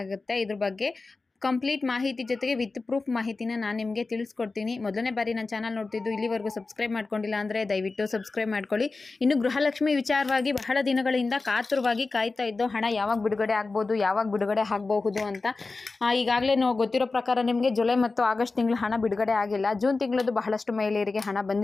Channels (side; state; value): right; quieter; 3.8 dB